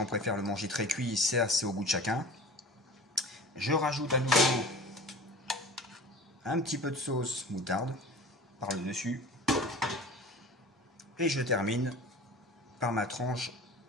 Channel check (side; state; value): both; normal; correlation 0.39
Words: préfèrent le manger très cuit, c'est au goût de chacun. Je rajoute à nouveau un petit peu de sauce moutarde par le dessus. Et je termine par ma tranche